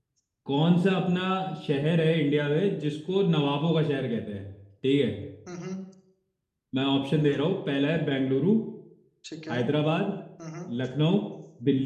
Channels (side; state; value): both; identical; correlation 1.00